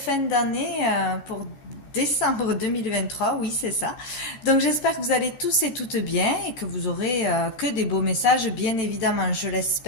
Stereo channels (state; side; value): late; right; 14 ms